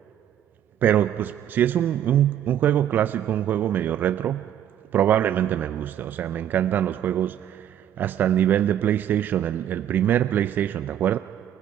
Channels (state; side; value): quieter; left; 10.5 dB